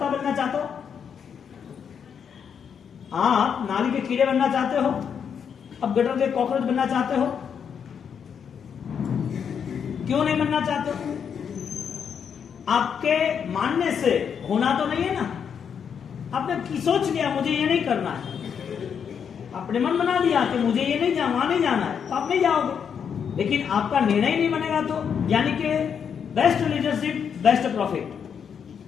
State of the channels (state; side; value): quieter; right; 7.3 dB